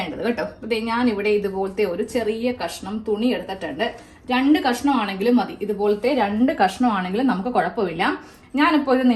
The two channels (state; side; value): identical; both; correlation 1.00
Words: കേട്ടോ. ഞാൻ ഇവിടെ ഇതുപോലത്തെ ഒരു ചെറിയ കഷ്ണം തുണി എടുത്തിട്ടുണ്ട്. 2 കഷ്ണമാണെങ്കിലും മതി. ഇതുപോലത്തെ 2 കഷ്ണമാണെങ്കിലും നമുക്ക് കുഴപ്പമില്ല. ഞാനിപ്പോൾ ഇത്